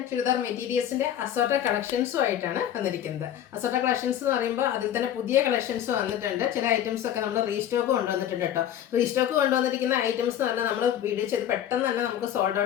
ചുരിദാർ മെറ്റീരിയൽസിൻ്റെ അസോർട്ടഡ് കളക്ഷൻസുമായിട്ടാണ് വന്നിരിക്കുന്നത്. അസോർട്ടഡ് കളക്ഷൻസ് എന്ന് പറയുമ്പോൾ അതിൽ തന്നെ പുതിയ കളക്ഷൻസ് വന്നിട്ടുണ്ട്. ചില ഐറ്റംസ് ഒക്കെ നമ്മൾ റീസ്റ്റോക്ക് കൊണ്ടുവന്നിട്ടുണ്ട് കേട്ടോ. റീസ്റ്റോക്ക് കൊണ്ടുവന്നിരിക്കുന്ന ഐറ്റംസ് തന്നെ നമ്മൾ വീഡിയോ ചെയ്ത് പെട്ടെന്ന് തന്നെ നമുക്ക് സോൾഡ്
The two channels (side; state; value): right; quieter; 10.7 dB